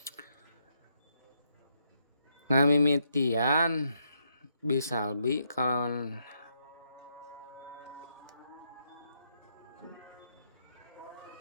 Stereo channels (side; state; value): both; inverted; correlation -0.78